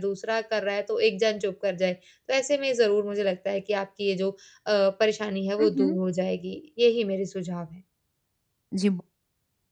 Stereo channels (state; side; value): identical; both; correlation 1.00